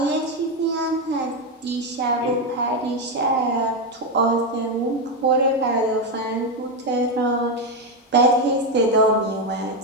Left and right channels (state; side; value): normal; both; correlation 0.08